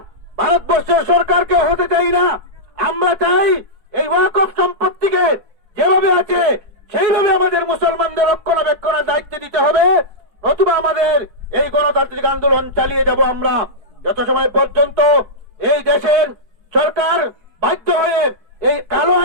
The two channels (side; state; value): left; late; 4.5 ms